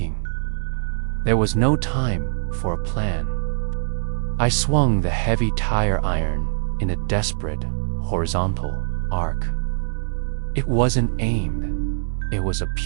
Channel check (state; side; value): silent; left; 64 dB below the other